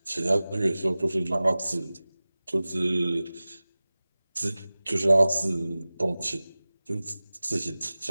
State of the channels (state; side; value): inverted; both; correlation -0.98